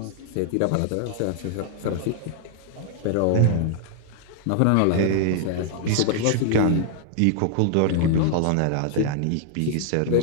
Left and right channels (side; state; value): both; different; correlation 0.00